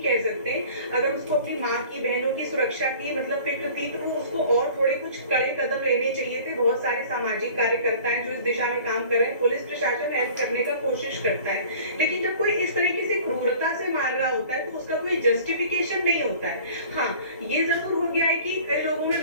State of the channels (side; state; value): both; inverted; correlation -0.46